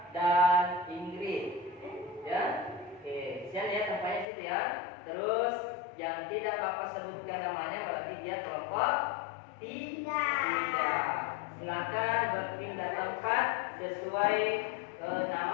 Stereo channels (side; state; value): right; drops out; at 4.2 s